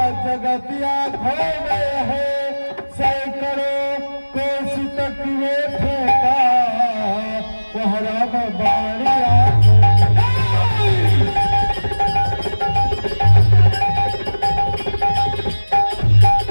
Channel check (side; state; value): both; inverted; correlation -1.00